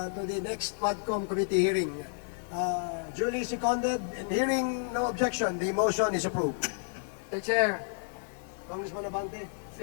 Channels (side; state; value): right; silent; digital silence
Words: to the next Quadcom committee hearing. Duly seconded and hearing no objection, the motion is approved. Mr. Chair, Congressman Abante.